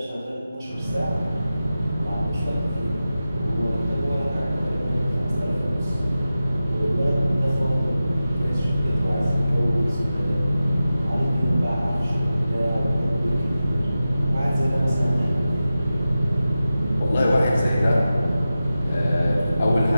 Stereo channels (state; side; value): inverted; both; correlation -0.93